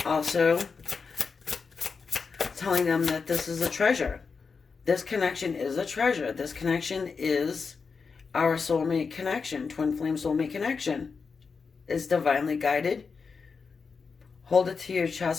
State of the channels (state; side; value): quieter; right; 5.2 dB